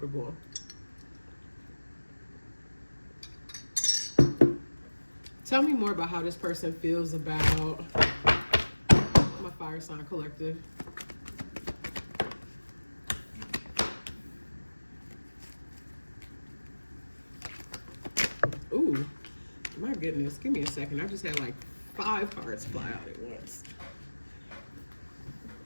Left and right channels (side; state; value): both; inverted; correlation -1.00